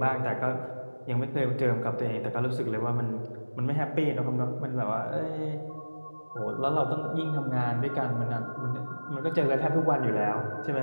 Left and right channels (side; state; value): both; inverted; correlation -1.00